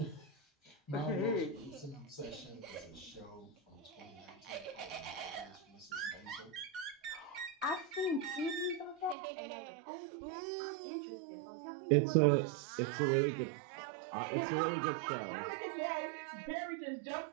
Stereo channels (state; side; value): drops out; left; at 9.2 s